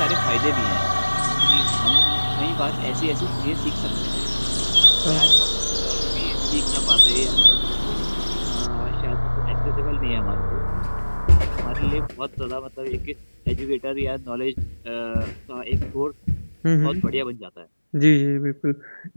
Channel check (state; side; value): inverted; both; correlation -1.00